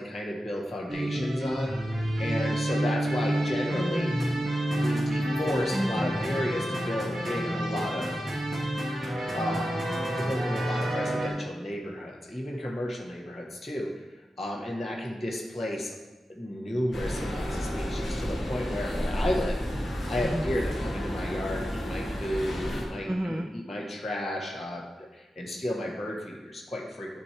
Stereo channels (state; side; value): normal; both; correlation 0.91